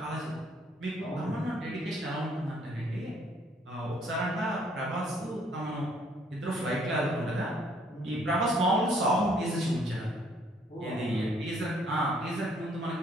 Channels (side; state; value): both; normal; correlation 0.64